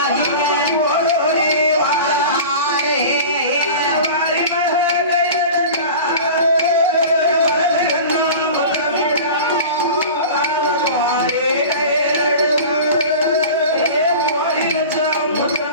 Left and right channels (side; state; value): both; inverted; correlation -0.36